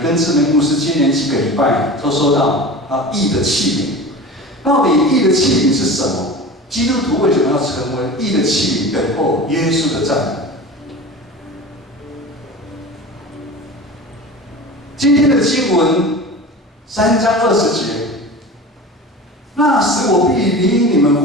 志明牧师接连几个礼拜都收到义的器皿，到底义的器皿是什么？基督徒为什么要成为义的器皿，等候耶稣的再来？今天的经文3章20节。那时我必领你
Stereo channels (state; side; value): normal; both; correlation 0.34